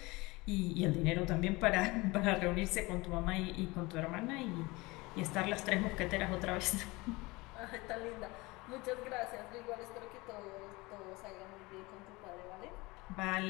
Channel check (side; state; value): right; quieter; 23.2 dB